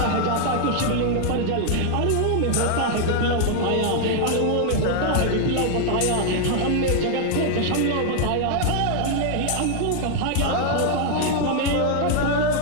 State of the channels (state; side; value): different; both; correlation 0.00